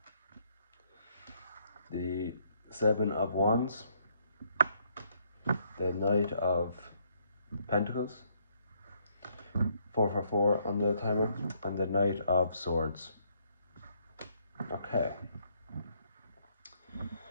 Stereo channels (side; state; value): both; inverted; correlation -0.70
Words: The Seven of Wands. The Knight of Pentacles. 4 for 4 on the timer. And the Knight of Swords. Okay.